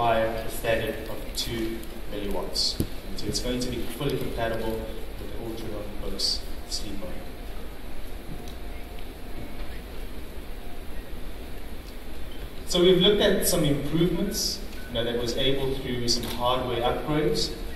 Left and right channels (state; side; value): identical; both; correlation 1.00